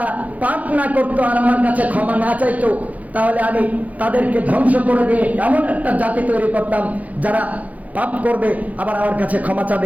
পাপ না করতো আর আমার কাছে ক্ষমা না চাইতো, তাহলে আমি তাদেরকে ধ্বংস করে দিয়ে এমন একটা জাতি তৈরি করতাম যারা পাপ করবে আবার আমার কাছে ক্ষমা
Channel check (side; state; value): left; late; 0.074 ms